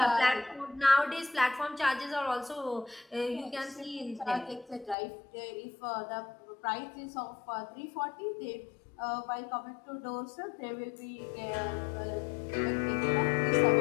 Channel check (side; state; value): right; drops out; at 5.0 s